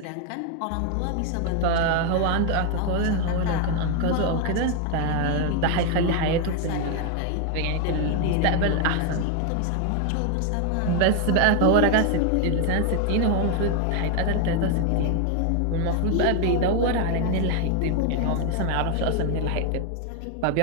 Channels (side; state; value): both; different; correlation 0.01